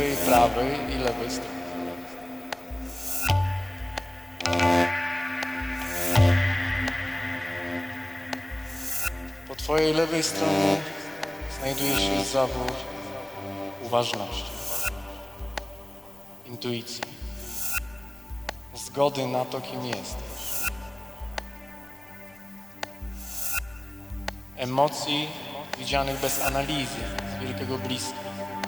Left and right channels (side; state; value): left; noise; rumble, 27 dB below the sound